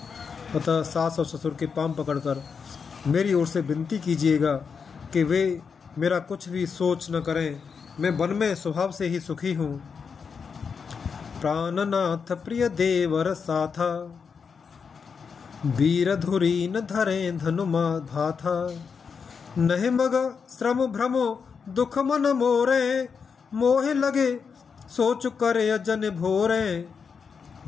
अतः सास और ससुर के पांव पकड़कर मेरी ओर से विनती कीजिएगा कि वे मेरा कुछ भी सोच न करें, मैं वन में स्वभाव से ही सुखी हूँ। प्राणनाथ प्रिय देवर साथा, वीर धुरी न धरे धनुमा भाथा। नहीं मग श्रम भ्रमो दुख मन मोरे, मोह लगे सोच करे अजन भोरे।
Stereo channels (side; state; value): right; quieter; 5.9 dB